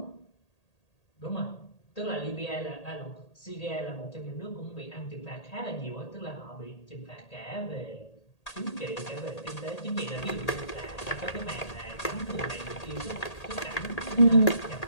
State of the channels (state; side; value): late; right; 1.8 ms